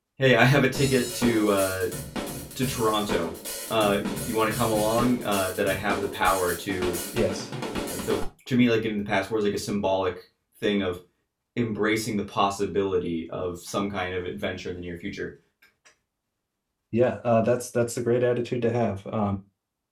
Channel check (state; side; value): identical; both; correlation 1.00